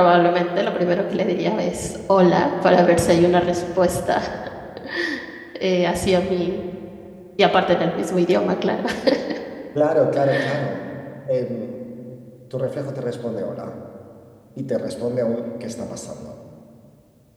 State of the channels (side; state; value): both; identical; correlation 1.00